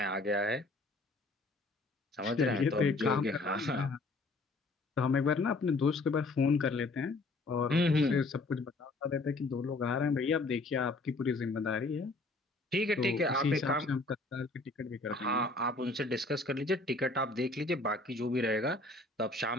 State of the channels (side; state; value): right; quieter; 3.1 dB